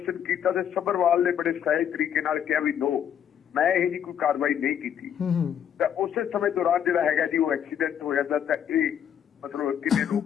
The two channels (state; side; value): quieter; right; 9.1 dB